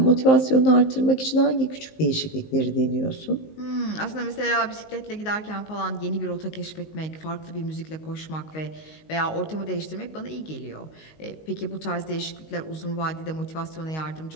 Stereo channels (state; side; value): late; right; 19 ms